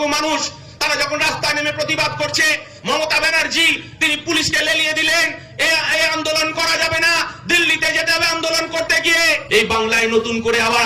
মানুষ, তারা যখন রাস্তায় নেমে প্রতিবাদ করছে, মমতা ব্যানার্জি তিনি পুলিশকে লেলিয়ে দিলেন, এই আন্দোলন করা যাবে না, দিল্লিতে যেতে হবে আন্দোলন করতে গিয়ে। এই বাংলায় নতুন করে আবার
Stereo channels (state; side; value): identical; both; correlation 1.00